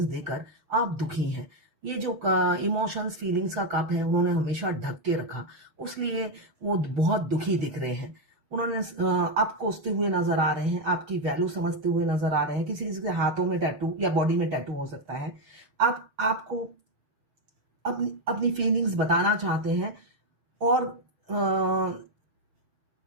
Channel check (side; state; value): left; late; 6.2 ms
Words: देकर आप दुखी हैं। ये जो इमोशंस फीलिंग्स का कप है, उन्होंने हमेशा ढक के रखा, उसलिए वो बहुत दुखी दिख रहे हैं। उन्होंने आप कोसते हुए नजर आ रहे हैं, आपकी वैल्यू समझते हुए नजर आ रहे हैं। किसी किसी के हाथों में टैटू या बॉडी में टैटू हो सकता है। आपको अपनी फीलिंग्स बताना चाहते हैं, और